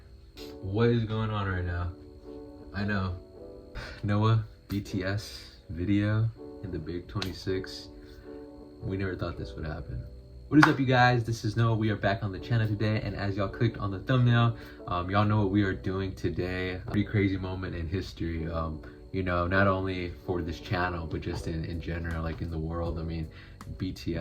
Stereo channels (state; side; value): identical; both; correlation 1.00